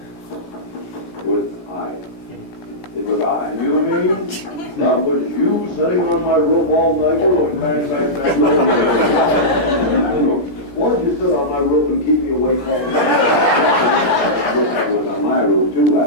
It was I. It was I. You know what I mean? That was you sitting on my roof all night. Why did you sit on my roof and keep me awake all night? Woodpecker was on my roof too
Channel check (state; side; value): late; right; 17 ms